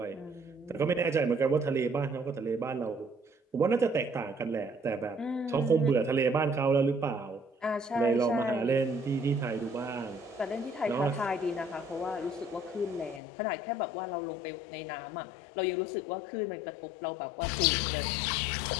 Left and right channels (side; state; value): right; drops out; at 13.2 s